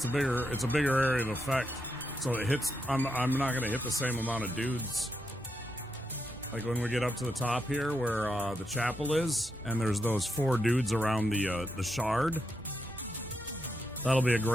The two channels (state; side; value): normal; both; correlation 0.83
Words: a bigger area of effect. So it hits I'm not gonna hit the same amount of dudes. Like when we get up to the top here where the chapel is, and there's those 4 dudes around the shard. That'll be a